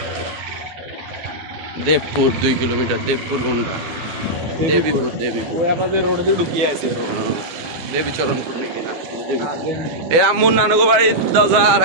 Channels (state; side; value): late; left; 12 ms